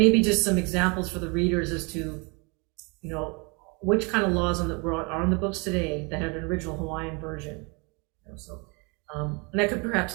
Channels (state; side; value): quieter; left; 31.0 dB